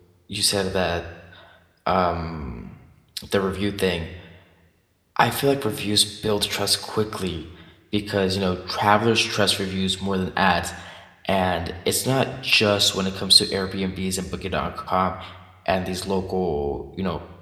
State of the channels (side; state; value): both; identical; correlation 1.00